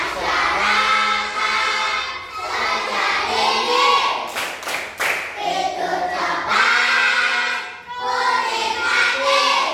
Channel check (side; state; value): both; identical; correlation 1.00